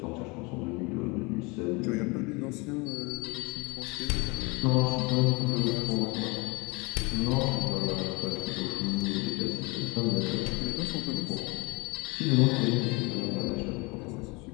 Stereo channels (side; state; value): right; quieter; 27.1 dB